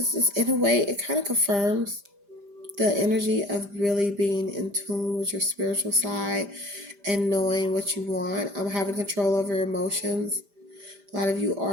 just, in a way, it kind of confirms the energy of really being in tune with your spiritual side and knowing what you want. Having control over your emotions. A lot of you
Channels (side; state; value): left; late; 5.0 ms